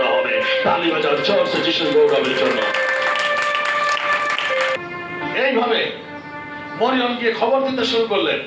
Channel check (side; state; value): both; identical; correlation 1.00